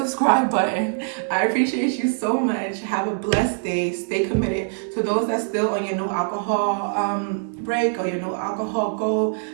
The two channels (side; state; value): left; silent; digital silence